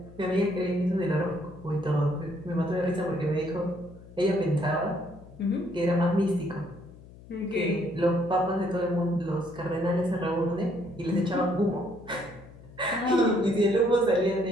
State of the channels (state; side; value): noise; left; hum, 20 dB below the sound